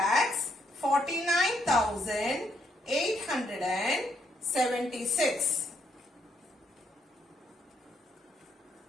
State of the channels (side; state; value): both; normal; correlation 0.75